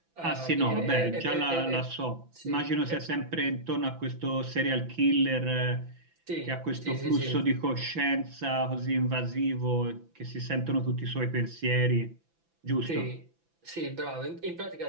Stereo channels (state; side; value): late; left; 5.9 ms